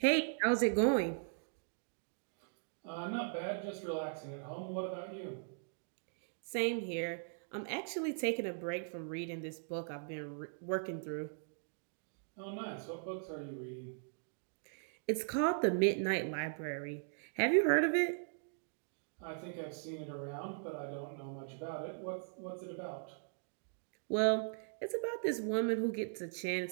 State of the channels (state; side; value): silent; left; digital silence